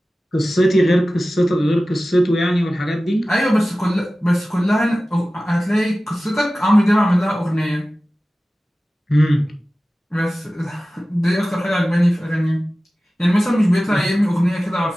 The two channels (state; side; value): normal; both; correlation 0.96